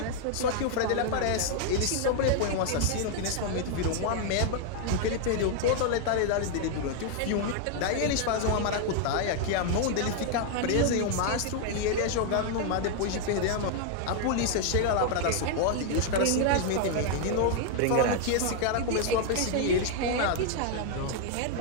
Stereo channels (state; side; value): different; both; correlation 0.00